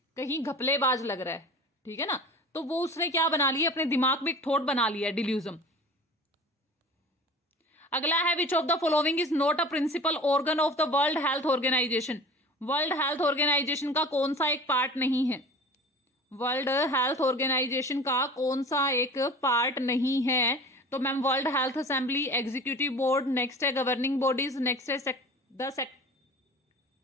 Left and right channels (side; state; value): both; normal; correlation 0.39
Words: कहीं घपलेबाज लग रहा है, ठीक है ना। तो वो उसने क्या बना लिया? अपने दिमाग में एक थॉट बना लिया, डिल्यूजन। अगला है which of the following is not a principal organ of the world health organisation. World health organisation का कौन सा एक पार्ट नहीं है? वर्ल्ड हेल्थ ऑर्गेनाइजेशन का कौन सा एक पार्ट नहीं है? तो ma'am world health assembly, executive board, next है गवर्निंग बॉडीज, नेक्स्ट है द